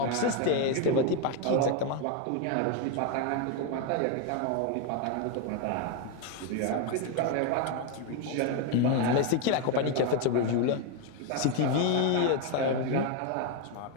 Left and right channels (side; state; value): both; different; correlation 0.01